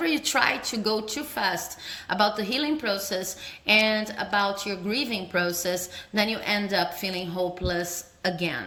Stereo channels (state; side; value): identical; both; correlation 1.00